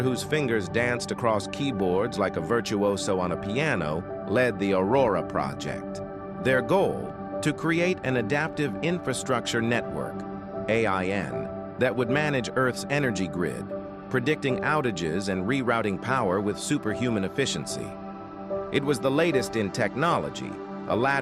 whose fingers danced across keyboards like a virtuoso on a piano, led the Aurora Project. Their goal, to create an adaptive infrastructure network, AIN, that would manage Earth's energy grid, predicting outages and rerouting power with superhuman efficiency. It was the latest in technology, a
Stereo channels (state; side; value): identical; both; correlation 1.00